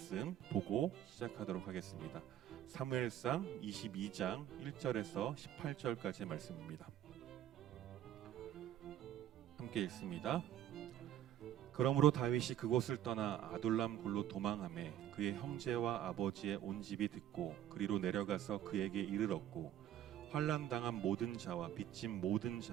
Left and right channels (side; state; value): left; quieter; 11.6 dB